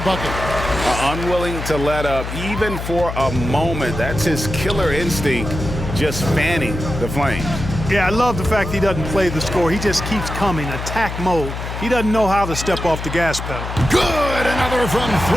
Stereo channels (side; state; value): left; noise; hum, 7 dB below the sound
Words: bucket. Unwilling to let up even for a moment. That's his killer instinct, just fanning the flames. Yeah, I love the fact he doesn't play the score. He just keeps coming, attack mode. He doesn't know how to step off the gas pedal. Good, another from